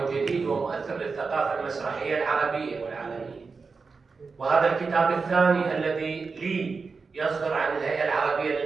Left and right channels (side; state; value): left; quieter; 4.7 dB